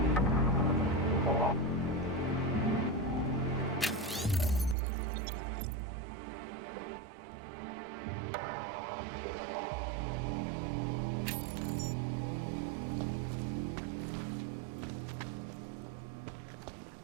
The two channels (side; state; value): left; drops out; at 4.8 s